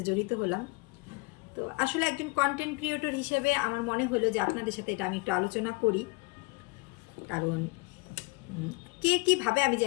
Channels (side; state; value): right; quieter; 26.9 dB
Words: জড়িত হলাম। তো আসলে একজন কন্টেন্ট ক্রিয়েটর হিসেবে আমার মনে হলো যে আপনাদের সাথে এটা আমি একটু আলোচনা করি। কারণ কে কীভাবে আমি